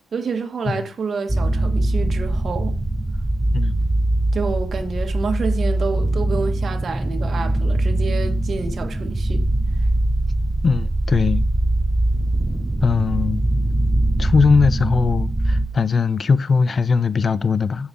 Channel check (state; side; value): normal; both; correlation 0.90